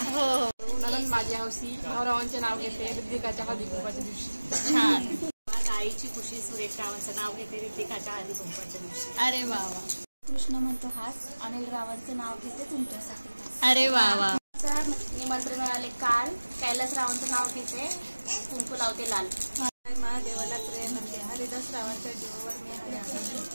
हो नंदन माझी हौसी, भाऊरावांचे नाव घेते रिद्धिकाच्या हळदी कुंकवाच्या दिवशी. छान. आईची खुशी, सुरेश रावांचं नाव घेते रिद्धिकाच्या हळदी कुंकवाच्या दिवशी. अरे वा वा. कृष्ण म्हणतो हास, अनिल रावांचं नाव घेते तुमच्यासाठी खास. अरे वा वा. निमंत्रण मिळाले काल, कैलास रावांचं नाव घेते कुंकू लावते लाल. महादेवाला प्रेम म्हणते, हरिदास रावांच्या जीवावर मी हरी.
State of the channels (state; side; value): inverted; both; correlation -1.00